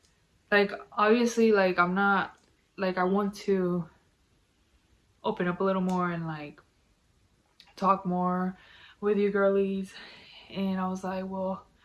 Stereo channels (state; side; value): identical; both; correlation 1.00